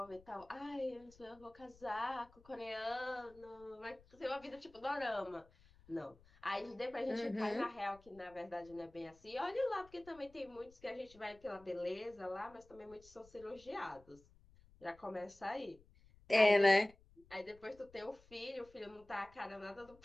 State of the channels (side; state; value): left; noise; rumble, 26 dB below the sound